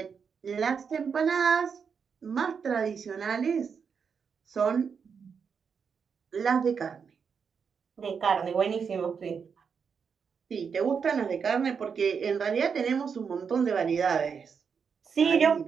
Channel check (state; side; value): quieter; left; 6.3 dB